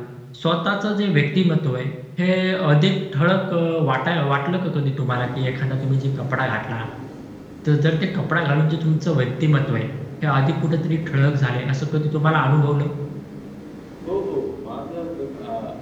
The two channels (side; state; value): both; identical; correlation 1.00